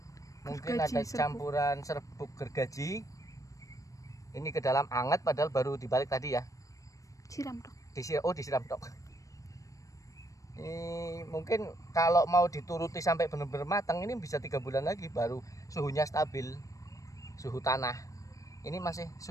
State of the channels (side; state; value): right; late; 0.16 ms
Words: Mungkin Gergaji, ada campuran serbuk gergaji. Ini ke dalam anget padahal baru dibalik tadi ya. Siram dong. Disiram dok. Ini mungkin kalau mau dituruti sampai benar-benar matang ini bisa 3 bulan lagi baru suhunya stabil. Suhu tanah. Ini masih